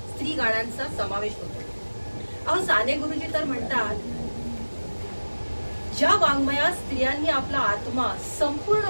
स्त्री गाण्यांचा समावेश होतो. अहो साने गुरुजी तर म्हणतात, ज्या वाङ्मयात स्त्रियांनी आपला आत्मा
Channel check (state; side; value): inverted; both; correlation -1.00